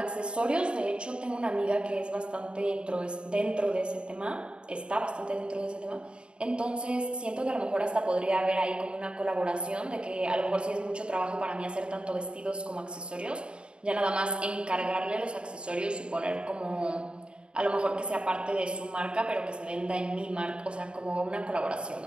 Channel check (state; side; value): late; left; 0.053 ms